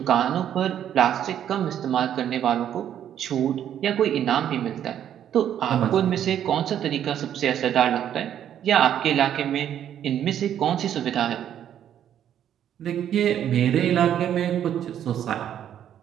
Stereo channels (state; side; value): quieter; left; 10.1 dB